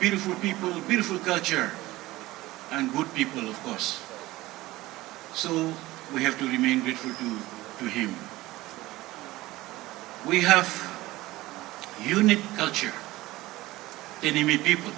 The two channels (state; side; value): quieter; left; 18.3 dB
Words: culture, and good people, of course. So we have to remain grateful to Him. We have unique culture, Tenyimi people.